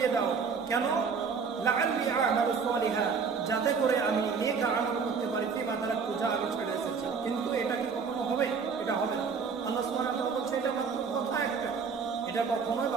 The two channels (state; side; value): quieter; left; 5.6 dB